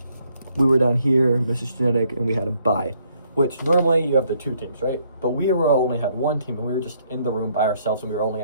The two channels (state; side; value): inverted; both; correlation -0.69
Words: We were down here, Mrs. Genetic, and we had a bye. Which normally you have the 2 teams, right? But we only had 1 team, and we were just in the room by ourselves, and we were only